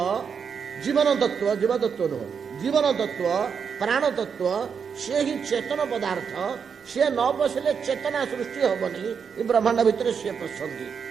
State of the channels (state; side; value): quieter; left; 6.5 dB